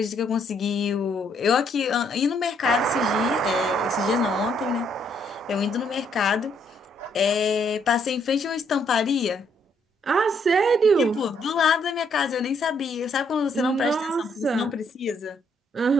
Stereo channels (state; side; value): normal; both; correlation 0.70